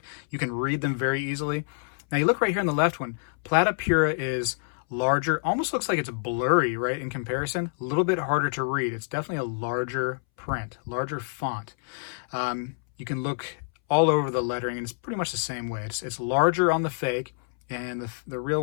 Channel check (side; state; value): right; silent; 60 dB below the other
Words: can read them very easily. Now you look right here on the left one, Plata Pura is larger, almost looks like it's blurry, right, in comparison. A little bit harder to read. It's definitely a larger print, larger font. You can look all over the lettering, and it's pretty much the same way. It's larger on the fake, and the real